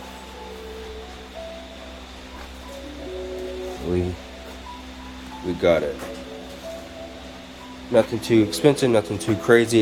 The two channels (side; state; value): both; identical; correlation 1.00